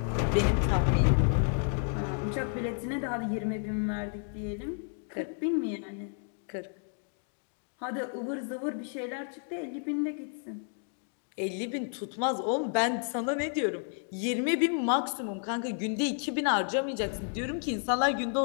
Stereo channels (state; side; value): silent; right; 57 dB below the other